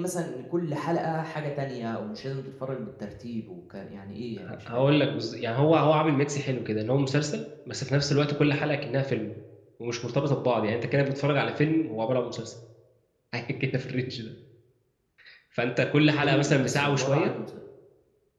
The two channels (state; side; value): identical; both; correlation 1.00